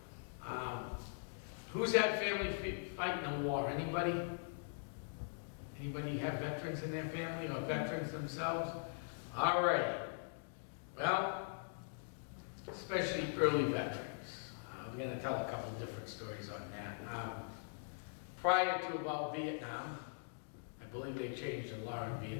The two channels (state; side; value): silent; right; digital silence